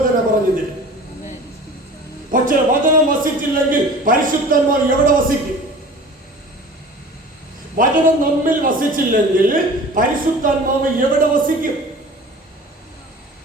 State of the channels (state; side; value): normal; both; correlation 0.41